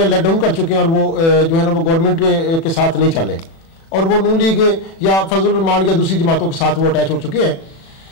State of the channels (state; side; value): late; right; 36 ms